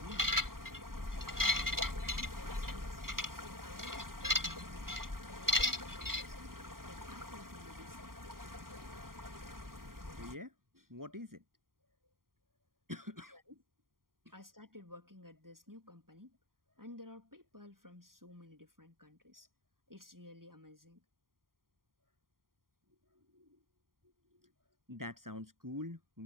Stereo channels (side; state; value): left; late; 0.91 ms